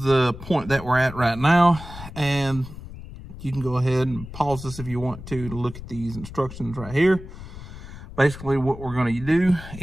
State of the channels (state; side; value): noise; left; rumble, 13 dB below the sound